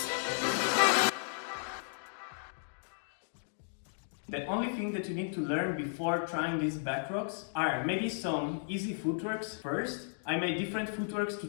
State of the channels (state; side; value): silent; right; digital silence